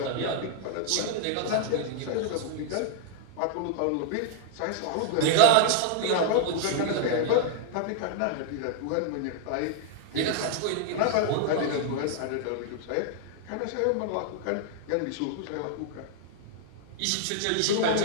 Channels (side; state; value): both; different; correlation 0.00